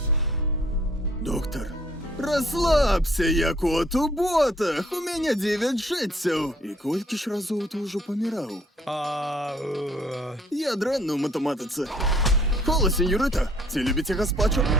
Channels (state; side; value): normal; both; correlation 0.61